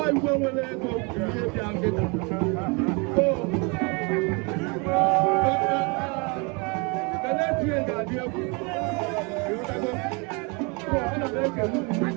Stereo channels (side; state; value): left; quieter; 31.1 dB